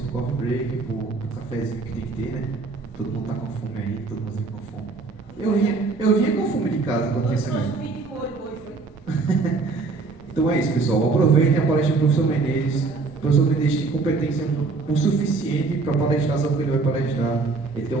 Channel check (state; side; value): quieter; left; 4.0 dB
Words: coffee break, pro cafezinho que tem que ter, né? Todo mundo tá com fome aí, todo mundo vem com fome. Eu vinha com fome de casa quando tinha semana. Então é isso, pessoal. Aproveitem a palestra do professor Menezes. O professor Menezes tem competência o suficiente para palestrar sobre o que ele vai palestrar. Ele tem